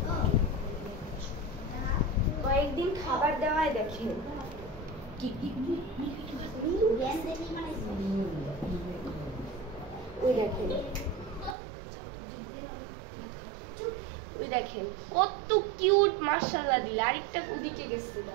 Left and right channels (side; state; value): left; drops out; at 11.6 s